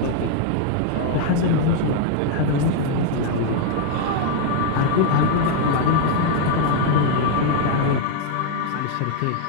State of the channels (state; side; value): different; both; correlation 0.00